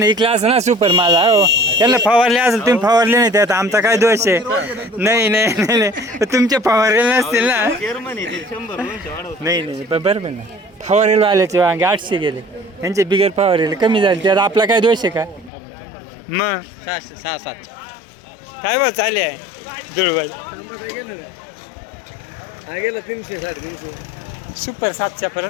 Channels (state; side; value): drops out; right; at 15.5 s